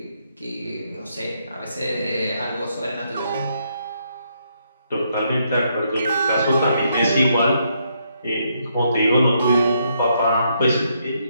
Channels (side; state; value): both; inverted; correlation -0.75